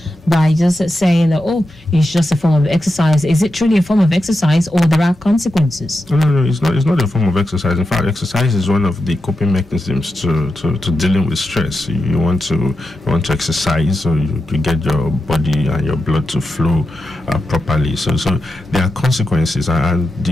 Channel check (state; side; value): normal; both; correlation 0.89